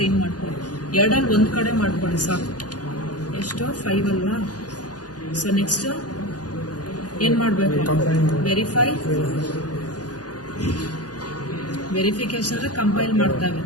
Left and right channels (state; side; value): late; right; 0.69 ms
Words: ಮಾಡ್ಕೊಳ್ಳಿ. ಎರಡಲ್ಲಿ ಒಂದು ಕಡೆ ಮಾಡ್ಕೊಳ್ಳಿ ಸಾಕು. ಎಷ್ಟು? 5 ಅಲ್ವಾ? ಸೊ ನೆಕ್ಸ್ಟ್ ಏನು ಮಾಡಬೇಕು? ವೆರಿಫಿಕೇಶನ್ ಕಂಪೈಲ್ ಮಾಡ್ತಾವೆ.